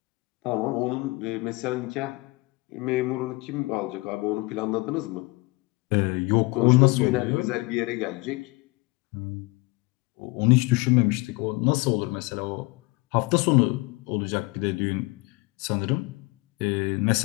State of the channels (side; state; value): right; quieter; 24.9 dB